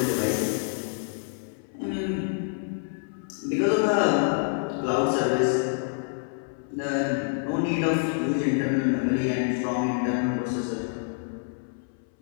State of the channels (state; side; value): silent; right; 60 dB below the other